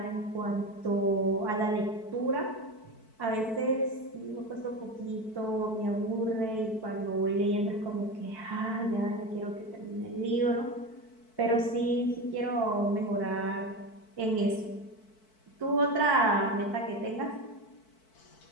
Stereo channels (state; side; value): late; right; 4.6 ms